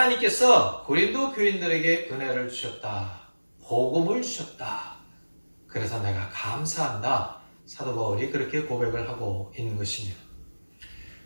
고린도 교인들에게 은혜를 주셨다. 복음을 주셨다. 그래서 내가 감사한다. 사도 바울이 그렇게 고백을 하고 있는 것입니다.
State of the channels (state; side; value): inverted; both; correlation -1.00